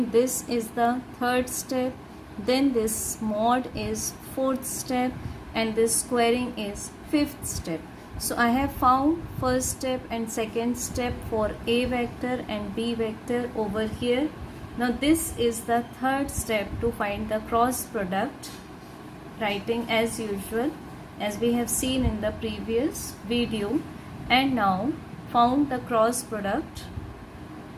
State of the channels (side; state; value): both; identical; correlation 1.00